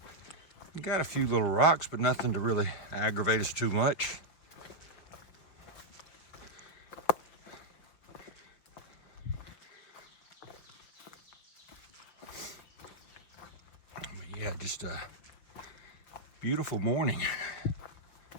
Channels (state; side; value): late; right; 5.9 ms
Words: We got a few little rocks, but nothing to really aggravate us too much. Yeah, just a beautiful morning